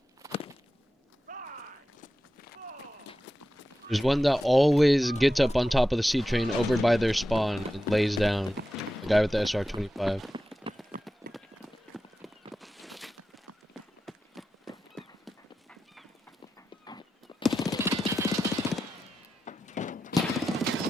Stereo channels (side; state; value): both; normal; correlation 0.91